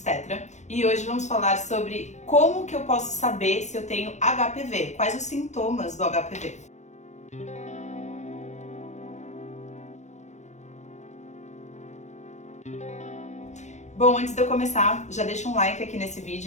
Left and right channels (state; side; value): late; right; 0.34 ms